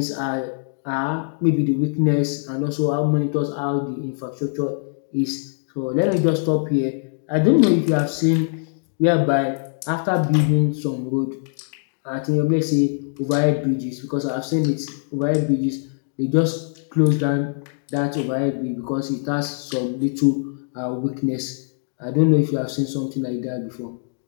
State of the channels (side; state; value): right; silent; digital silence